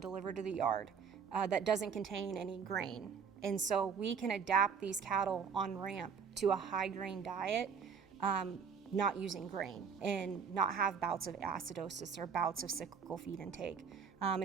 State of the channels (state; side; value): quieter; left; 6.3 dB